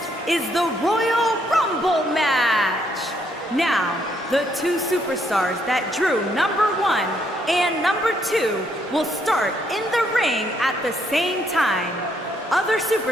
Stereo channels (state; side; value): normal; both; correlation 0.72